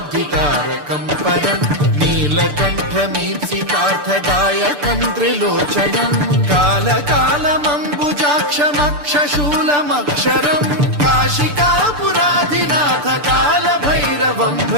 परं नीलकण्ठमीप्सितार्थदायकं त्रिलोचनं कालकालमम्बुजाक्षमक्षशूलमक्षरं काशिकापुराधिनाथ कालभैरवं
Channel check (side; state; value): left; late; 6.8 ms